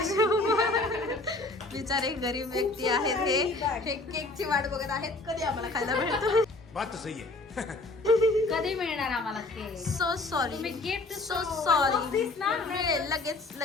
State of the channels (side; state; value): right; quieter; 3.1 dB